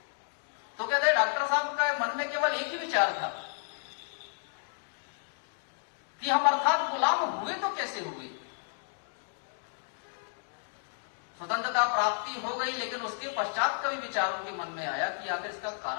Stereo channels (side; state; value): right; silent; digital silence